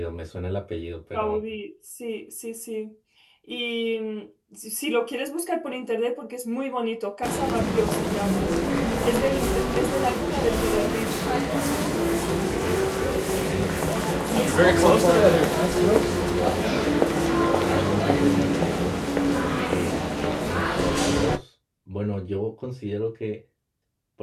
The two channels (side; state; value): both; identical; correlation 1.00